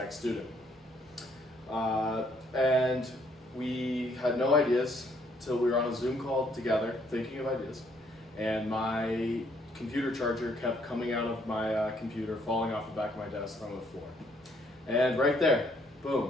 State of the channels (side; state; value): both; normal; correlation 0.68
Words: student. And we had no ideas till we were on a Zoom call together thinking of ideas, and my computer charger kept coming out of my computer, falling off the back of my desk on the floor. And right there,